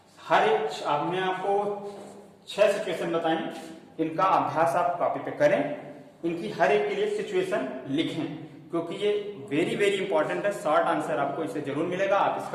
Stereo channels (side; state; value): both; identical; correlation 1.00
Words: हर एक आपने आपको 6 सिचुएशन बताई, इनका अभ्यास आप कॉपी पे करें, इनकी हर एक के लिए सिचुएशन लिखें, क्योंकि ये वेरी वेरी इंपॉर्टेंट है। शॉर्ट आंसर आपको इससे जरूर मिलेगा। आप